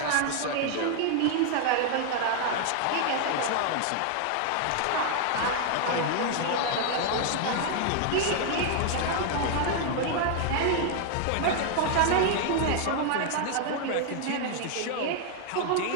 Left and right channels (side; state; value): both; different; correlation 0.00